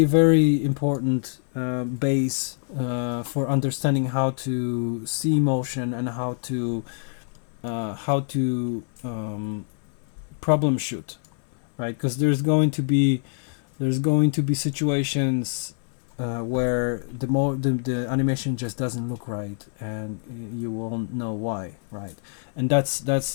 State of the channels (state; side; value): silent; right; digital silence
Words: very important base for understanding how to see motion and how to problem shoot, right? Because there's going to be situations where the animation just doesn't look right, and you won't know why, right? And this